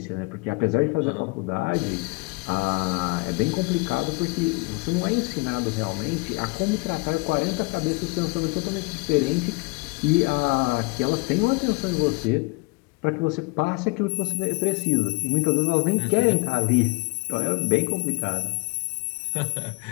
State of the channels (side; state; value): right; quieter; 27.6 dB